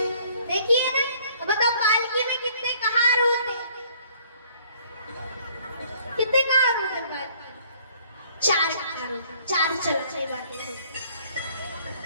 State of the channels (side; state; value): both; inverted; correlation -0.59